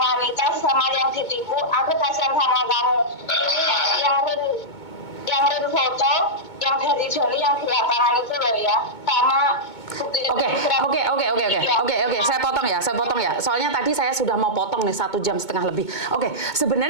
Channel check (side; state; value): right; late; 2.2 ms